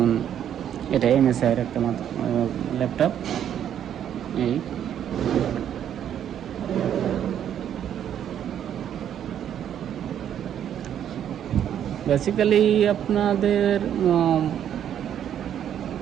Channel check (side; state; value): left; quieter; 9.8 dB